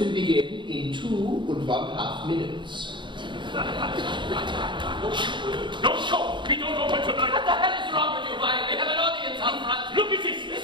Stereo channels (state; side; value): late; left; 0.23 ms